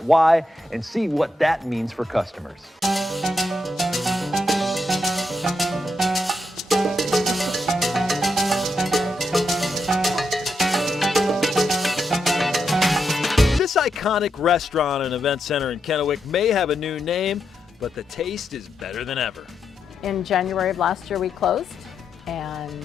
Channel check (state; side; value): normal; both; correlation 0.82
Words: why and see what that means for customers. This iconic restaurant and event center in Kennewick may have a new name, but the taste is better than ever. In January of last year we closed